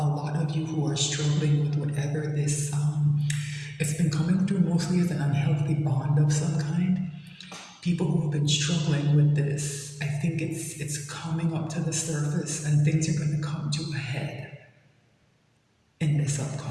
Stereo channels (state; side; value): identical; both; correlation 1.00